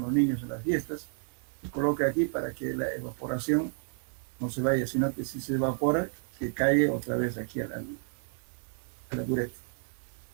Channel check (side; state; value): left; silent; 57 dB below the other